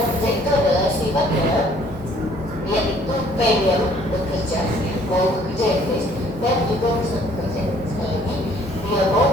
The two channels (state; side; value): normal; both; correlation 0.59